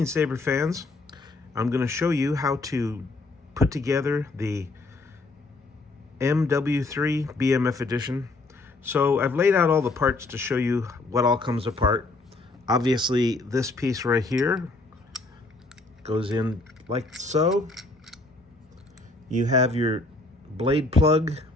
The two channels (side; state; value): right; quieter; 3.2 dB